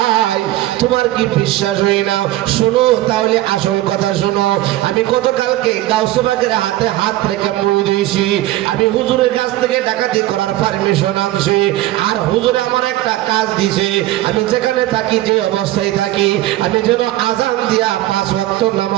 তোমার কি বিশ্বাস হই না? শোনো তাহলে আসল কথা শোনো। আমি গতকালকে গাউসবাগের হাতে হাত রেখে মই দিয়েছি, আমি হুজুরের কাছ থেকে ডাকাতি করার পারমিশন আনছি, আর হুজুরে আমার একটা কাজ দিছে, আমি যেখানে থাকি যে অবস্থায় থাকি আমি যেন আজান দিয়া 5 ওয়াক্ত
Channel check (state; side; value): quieter; left; 15.9 dB